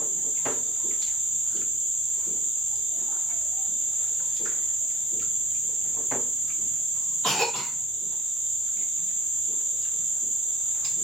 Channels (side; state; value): both; normal; correlation 0.58